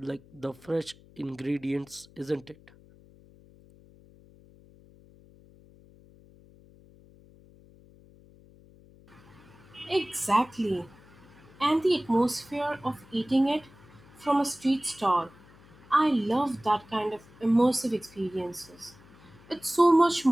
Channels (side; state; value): left; noise; hum, 25 dB below the sound